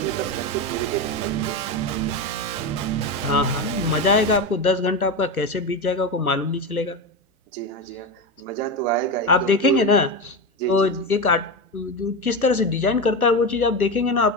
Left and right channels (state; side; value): normal; both; correlation 0.17